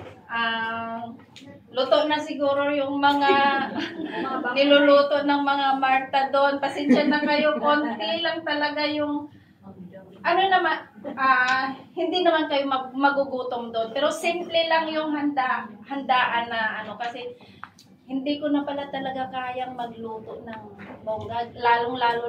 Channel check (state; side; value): identical; both; correlation 1.00